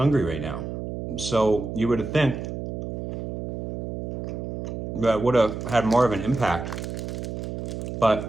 right now. So you would have think that would have had more of an impact.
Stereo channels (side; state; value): right; noise; hum, 5 dB below the sound